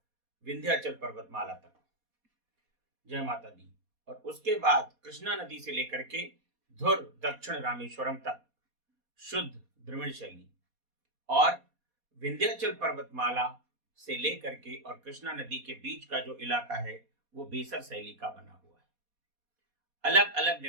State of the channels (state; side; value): late; left; 4.2 ms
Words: विंध्याचल पर्वतमाला तक, जय माता दी, और उसके बाद कृष्णा नदी से लेकर के धुर दक्षिण रामेश्वरम तक शुद्ध द्रविड़ शैली, और विंध्याचल पर्वतमाला से लेकर के और कृष्णा नदी के बीच का जो इलाका है वो बेसर शैली का बना हुआ है। अलग अलग